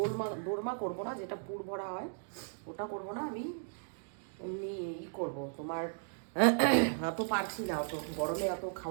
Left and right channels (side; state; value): left; silent; digital silence